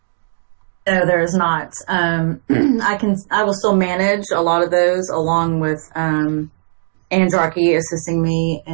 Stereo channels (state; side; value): silent; left; digital silence